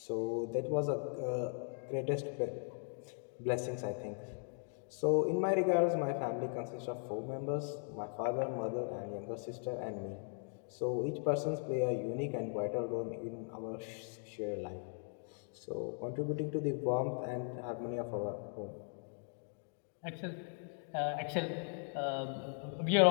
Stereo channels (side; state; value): right; silent; 52 dB below the other